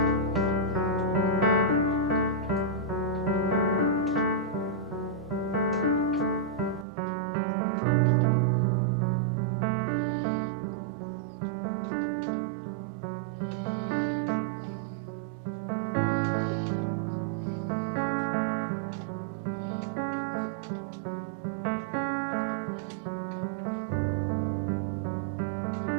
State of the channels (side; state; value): left; drops out; at 6.9 s